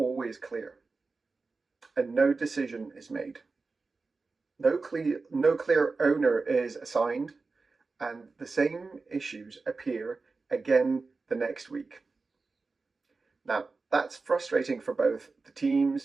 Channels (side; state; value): left; quieter; 4.0 dB